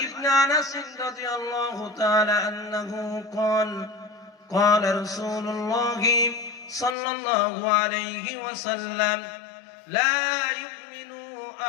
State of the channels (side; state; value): right; drops out; at 7.0 s